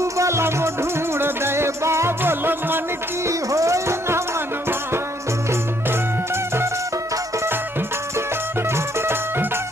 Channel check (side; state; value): both; normal; correlation 0.68